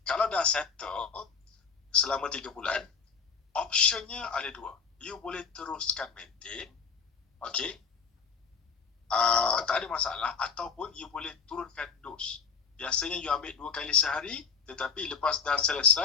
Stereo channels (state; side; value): quieter; right; 5.9 dB